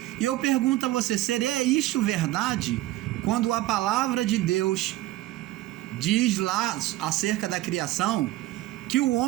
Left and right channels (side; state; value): left; quieter; 16.3 dB